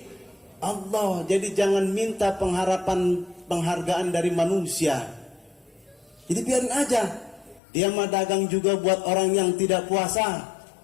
Allah. Jadi jangan minta penghargaan dari manusia. Jadi biarin aja. Dia mah dagang juga buat orang yang tidak puasa.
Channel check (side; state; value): right; drops out; at 7.6 s